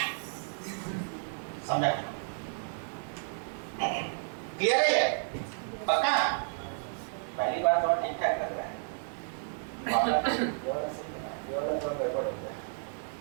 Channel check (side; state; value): left; silent; digital silence